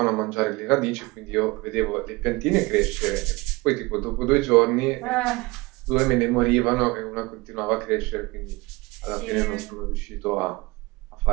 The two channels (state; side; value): quieter; left; 23.4 dB